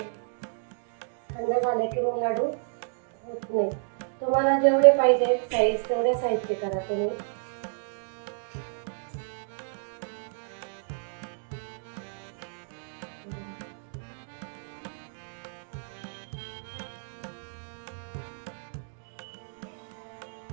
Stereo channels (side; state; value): left; silent; digital silence